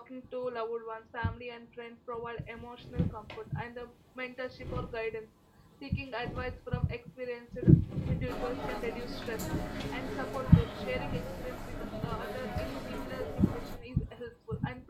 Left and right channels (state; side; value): identical; both; correlation 1.00